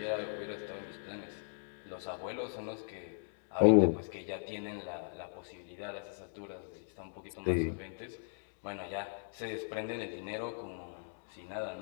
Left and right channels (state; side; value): silent; right; digital silence